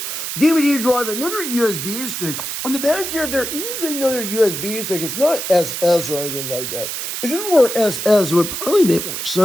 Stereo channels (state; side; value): noise; right; hiss, 5 dB below the sound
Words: DVD drive, another USB stick. On the back here, there is another USB stick. It's not SS or anything like that. If it were SS, it would probably make more